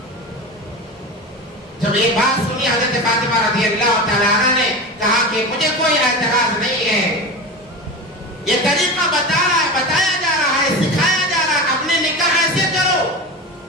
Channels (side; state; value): both; normal; correlation 0.26